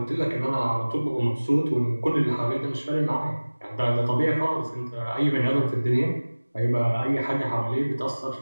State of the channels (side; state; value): both; inverted; correlation -1.00